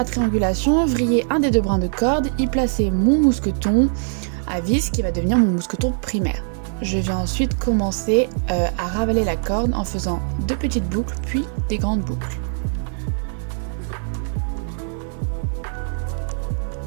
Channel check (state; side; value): silent; left; 56 dB below the other